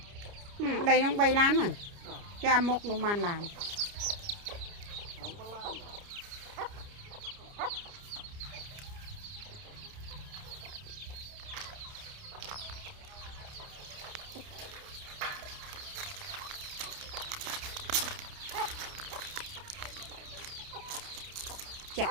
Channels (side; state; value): left; late; 30 ms